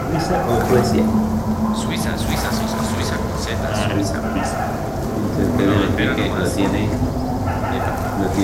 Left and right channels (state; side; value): identical; both; correlation 1.00